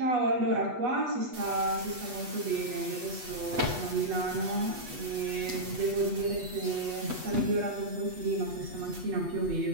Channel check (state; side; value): late; left; 8.2 ms